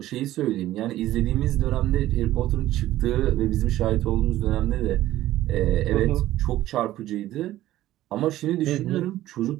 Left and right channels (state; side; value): quieter; left; 14.6 dB